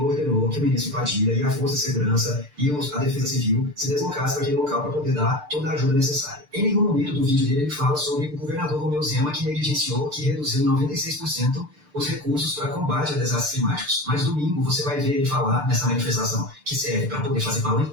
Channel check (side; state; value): left; late; 6.7 ms